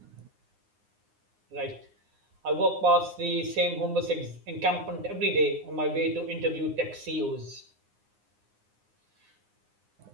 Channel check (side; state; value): left; late; 9.7 ms